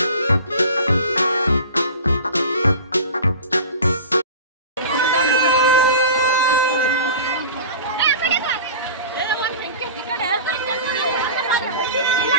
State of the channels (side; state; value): both; inverted; correlation -0.36